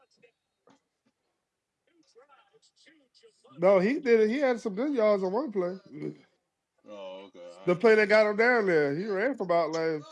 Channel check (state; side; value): identical; both; correlation 1.00